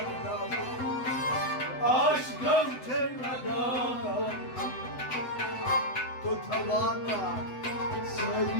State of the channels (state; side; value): late; right; 8.0 ms